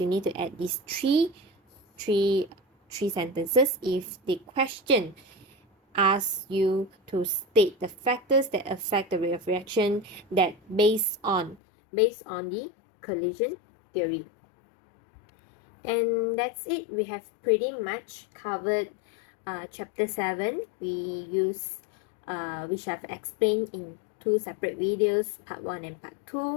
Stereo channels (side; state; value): right; drops out; at 11.6 s